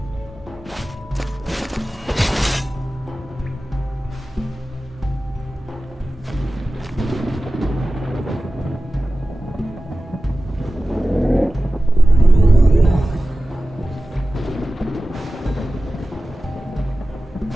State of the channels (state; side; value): normal; both; correlation 0.95